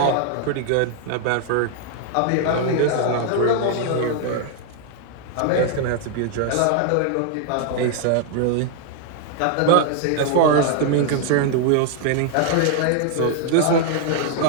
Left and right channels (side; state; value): both; different; correlation 0.00